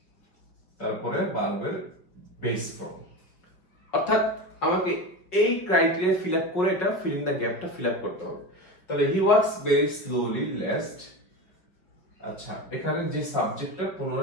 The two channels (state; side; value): late; right; 5.2 ms